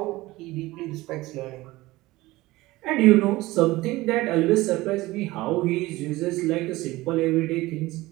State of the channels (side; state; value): left; quieter; 19.1 dB